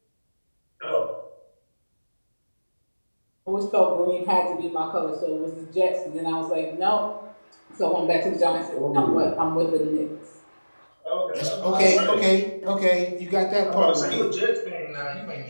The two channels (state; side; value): inverted; both; correlation -1.00